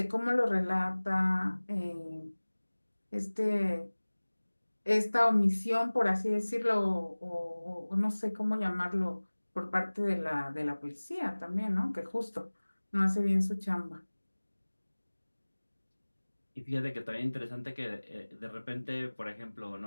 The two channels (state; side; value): inverted; both; correlation -1.00